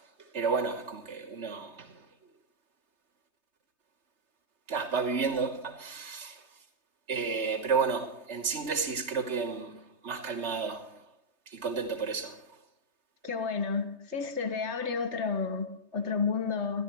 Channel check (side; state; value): left; late; 3.3 ms